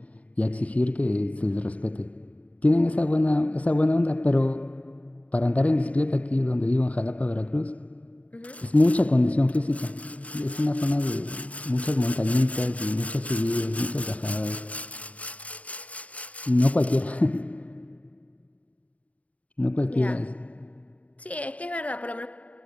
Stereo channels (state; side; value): late; right; 0.068 ms